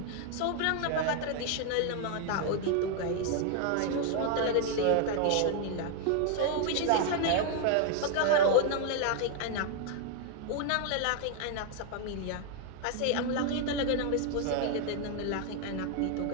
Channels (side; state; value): both; different; correlation 0.01